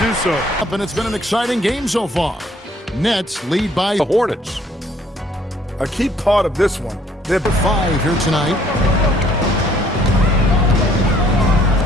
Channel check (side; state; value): both; normal; correlation 0.62